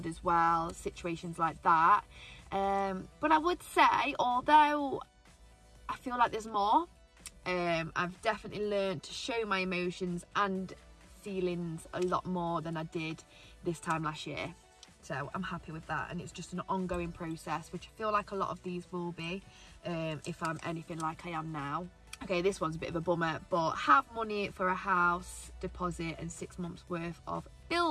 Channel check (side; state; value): both; identical; correlation 1.00